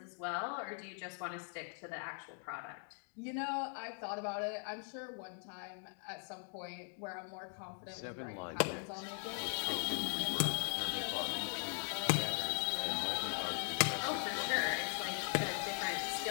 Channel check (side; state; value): right; silent; 51 dB below the other